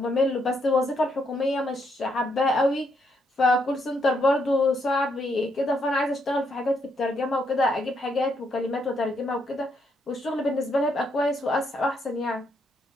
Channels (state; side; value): normal; both; correlation 0.76